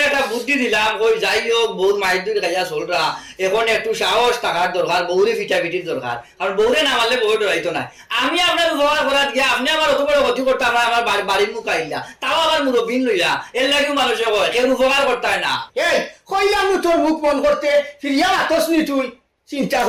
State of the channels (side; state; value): both; identical; correlation 1.00